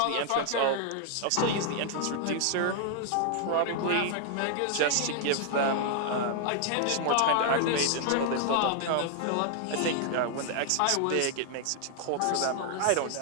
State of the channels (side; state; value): both; different; correlation 0.00